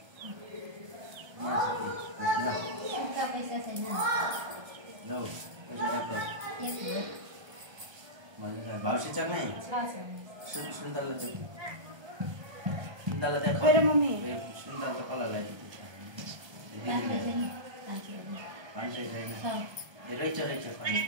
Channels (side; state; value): left; late; 1.3 ms